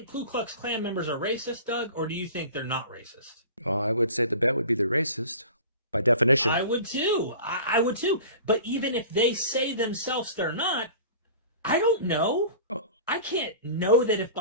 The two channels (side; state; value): both; inverted; correlation -0.39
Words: Ku Klux Klan members are racist, Doug, or do you think they're not racist? Well, I would say the bet would be they're racist by definition. I would too. I would too. But even if they say themselves they're not, I don't know. Oh. I can't know that if